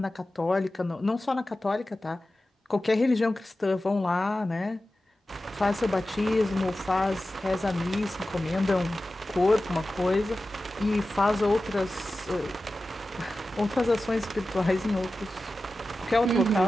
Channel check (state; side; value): normal; both; correlation 0.94